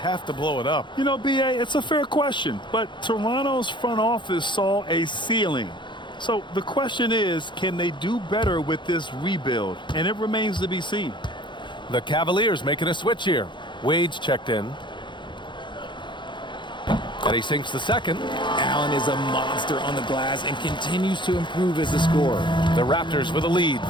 to blow it up? You know, B.A., it's a fair question, but Toronto's front office saw a ceiling. So the question is, can they do better with this rebuild? And it remains to be seen. The Cavaliers making a switch here. Wade's checked in. And he sinks the second. Allen is a monster on the glass and continues to improve as a scorer. The Raptors with a lead.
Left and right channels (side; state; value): right; late; 0.23 ms